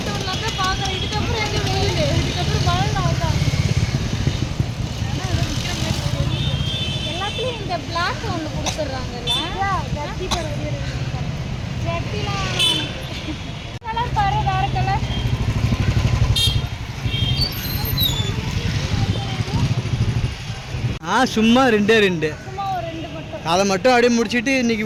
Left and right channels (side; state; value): both; identical; correlation 1.00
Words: பார்க்குறேன். இதுக்கப்புறம் எங்கே வெயில், இதுக்கப்புறம் மழை ஆகும். எல்லாத்துலேயும் இந்த பிளாக் ஒன்று கொடுத்துட்றாங்கல்ல. ஜட்டிலாம் கலர் பாரு, வேறு கலர். சும்மா 2 சும்மா ஒரு 2 மட்டும். அதை மட்டும் அப்படியே முடிச்சுட்டு இன்னைக்கு